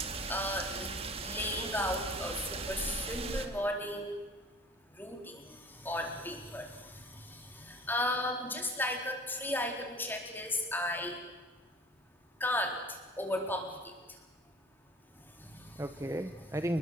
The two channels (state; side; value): normal; both; correlation 0.46